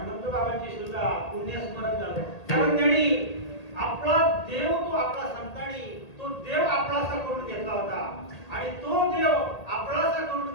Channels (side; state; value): right; late; 1.8 ms